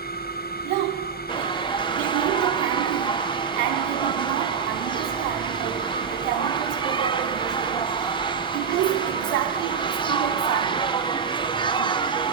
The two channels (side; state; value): left; quieter; 6.6 dB